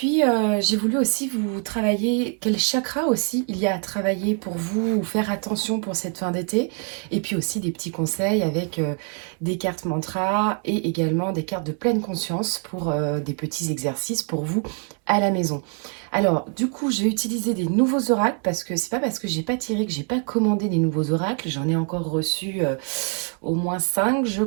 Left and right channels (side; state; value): left; quieter; 39.7 dB